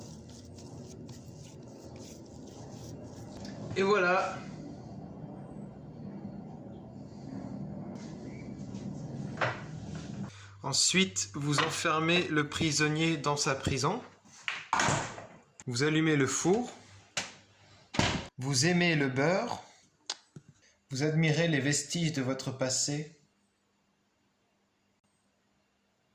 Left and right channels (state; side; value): identical; both; correlation 1.00